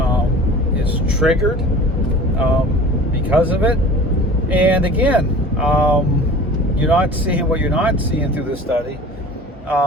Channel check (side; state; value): both; normal; correlation 0.41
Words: is triggered because of it. And again, you're not seeing what you're not seeing through this study